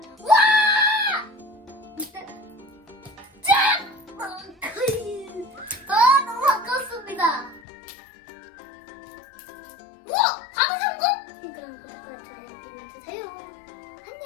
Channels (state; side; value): drops out; right; at 7.6 s